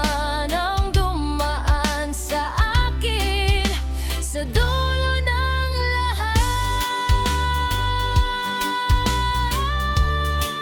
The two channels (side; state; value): both; identical; correlation 1.00